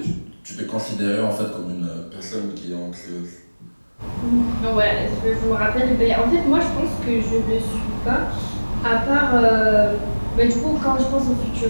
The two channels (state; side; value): inverted; both; correlation -1.00